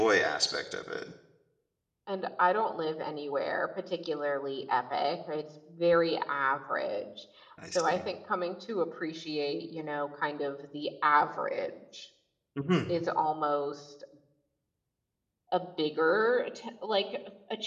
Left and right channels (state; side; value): identical; both; correlation 1.00